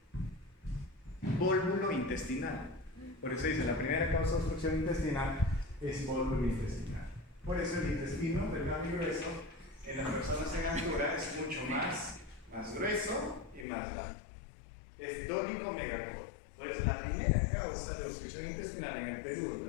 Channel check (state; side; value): drops out; right; at 13.7 s